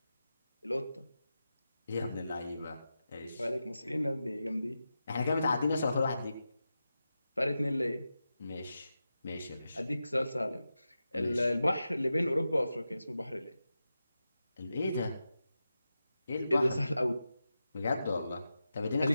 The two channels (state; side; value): inverted; both; correlation -0.91